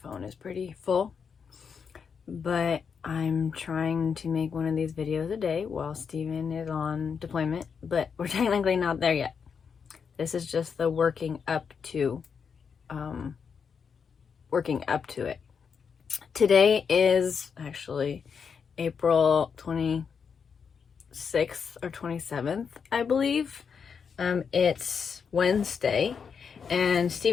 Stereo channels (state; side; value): quieter; right; 6.3 dB